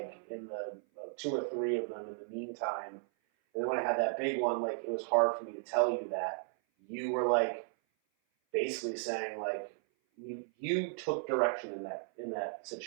in the 2 or 3 of them in the meantime. And then when I had that big one, like it was hard for me to tell you that. You were like basically saying like you took direction in that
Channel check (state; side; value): silent; left; 54 dB below the other